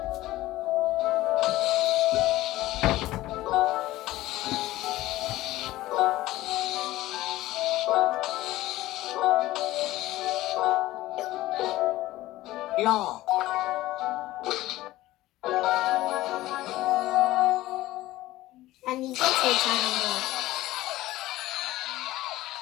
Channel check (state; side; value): quieter; right; 16.6 dB